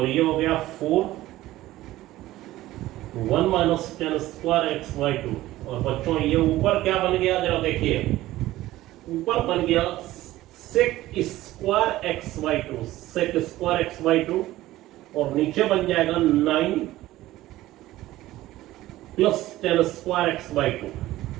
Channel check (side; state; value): left; quieter; 16.0 dB